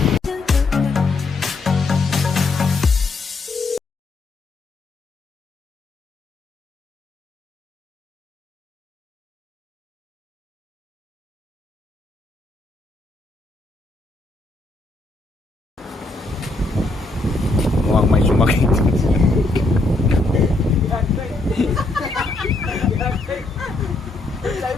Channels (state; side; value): quieter; right; 3.1 dB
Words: Mukhang may sumakit. Sabi